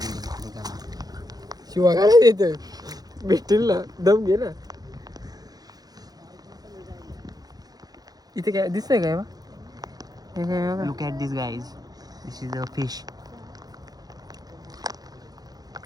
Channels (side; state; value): left; late; 0.19 ms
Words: शिवा काय देतोय. भेटतील ना दम घे ना. इथे काय दिसतंय काय बा. Look at this guys. This is a fish.